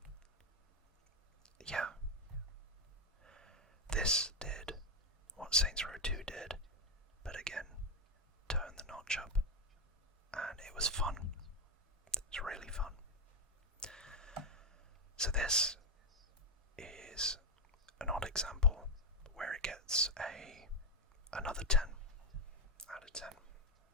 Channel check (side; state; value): both; normal; correlation 0.06